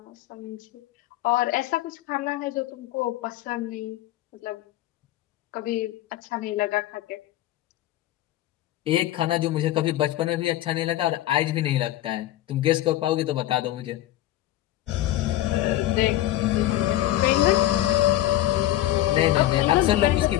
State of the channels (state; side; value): quieter; right; 14.5 dB